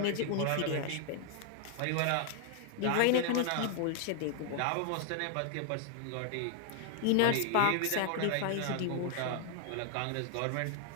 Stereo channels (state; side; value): different; both; correlation 0.00